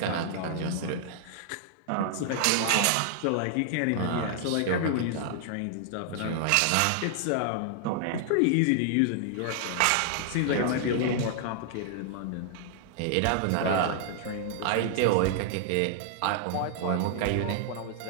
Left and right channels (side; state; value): both; different; correlation -0.01